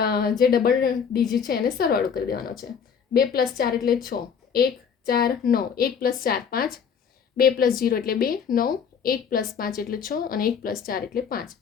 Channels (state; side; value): quieter; right; 6.9 dB